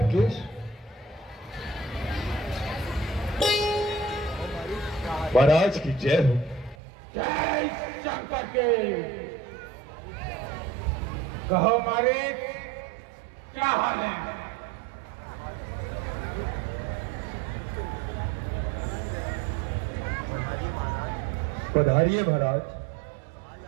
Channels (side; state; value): left; drops out; at 6.8 s